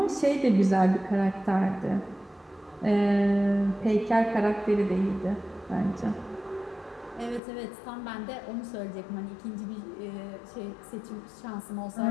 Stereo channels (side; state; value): right; drops out; at 7.4 s